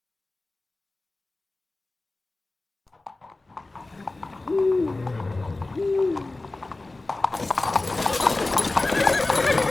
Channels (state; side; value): quieter; right; 3.1 dB